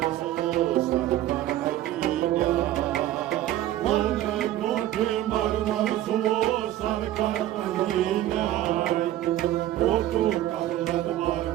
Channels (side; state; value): left; quieter; 13.5 dB